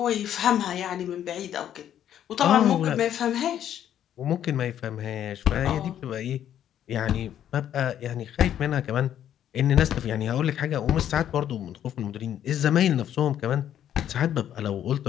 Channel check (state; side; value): quieter; right; 10.5 dB